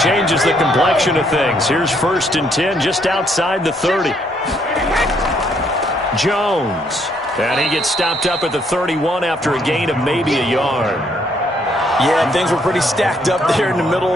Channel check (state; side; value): normal; both; correlation 0.70